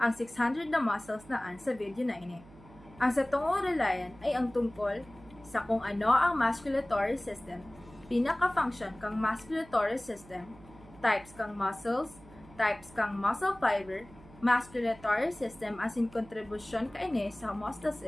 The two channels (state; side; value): noise; right; hum, 22 dB below the sound